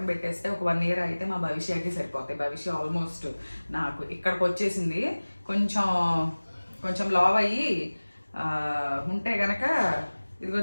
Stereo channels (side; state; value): both; inverted; correlation -1.00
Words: పెట్టేస్తే ఒక 1 year అయితే మా భవిష్యత్కి సరిపోతాయి. భవిష్య ఆల్మోస్ట్ నాకు ఇక్కడికి వచ్చేసింది. కొంచెం లావ్ అయ్యి ఉంటే గనక ఇదిగో